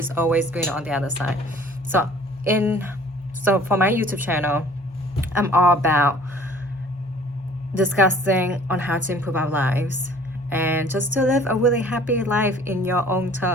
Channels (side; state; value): both; normal; correlation 0.52